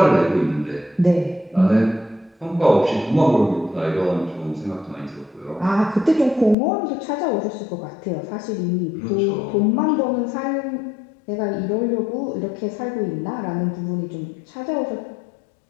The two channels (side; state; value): right; drops out; at 6.6 s